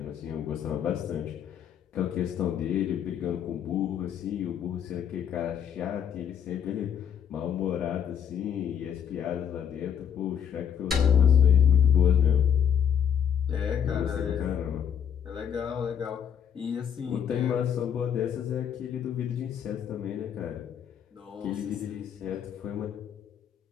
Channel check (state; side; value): quieter; right; 8.4 dB